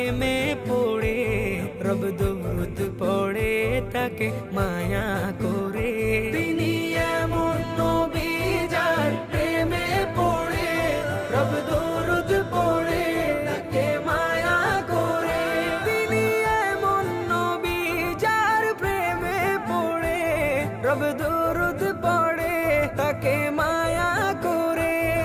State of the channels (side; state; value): both; identical; correlation 1.00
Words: পড়ে রব দরুদ পড়ে তাকে মায়া করে। তিনি এমন